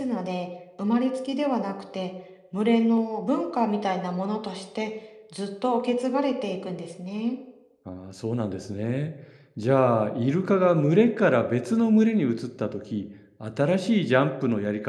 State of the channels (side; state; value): both; identical; correlation 1.00